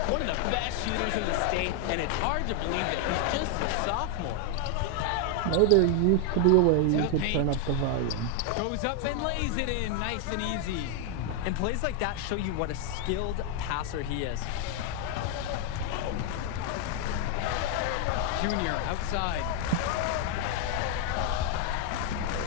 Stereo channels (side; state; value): both; different; correlation 0.01